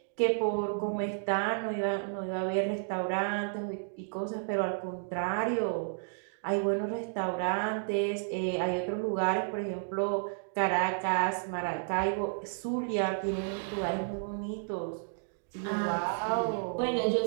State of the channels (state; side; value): silent; left; digital silence